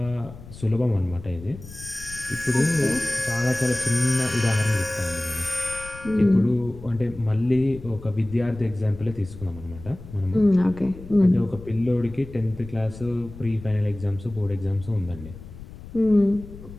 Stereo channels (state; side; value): noise; left; rumble, 15 dB below the sound